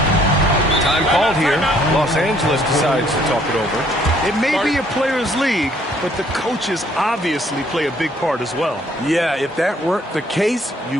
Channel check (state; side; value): normal; both; correlation 0.63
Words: Time called here. Los Angeles decides to talk it over. It may be a players' league, but the coaches obviously play a big part as well. Yeah, if that weren't the case,